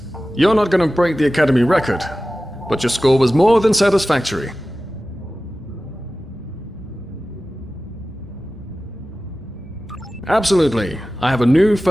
You're not going to break the Academy record, but your score was more than satisfactory. Absolutely. I have a new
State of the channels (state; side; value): normal; both; correlation 0.95